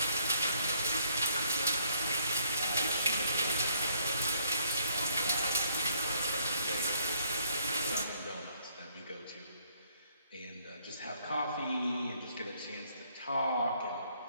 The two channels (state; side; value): inverted; both; correlation -0.67